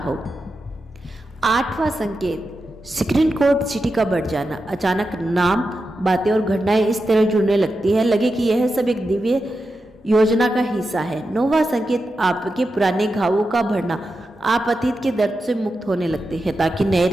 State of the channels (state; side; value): normal; both; correlation 0.89